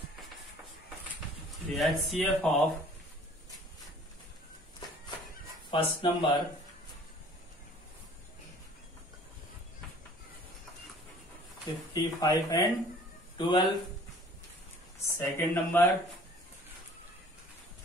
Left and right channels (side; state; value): both; normal; correlation 0.52